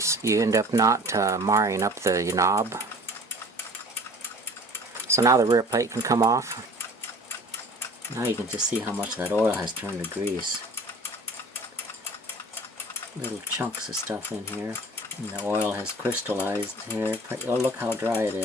you end up not marring up the knob. So now the rear plate can come off. Now you can just see how much that oil has turned to grease. Little chunks of stuff in here. And the oil has crystallized here. Oh, look how dry it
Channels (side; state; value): both; normal; correlation 0.47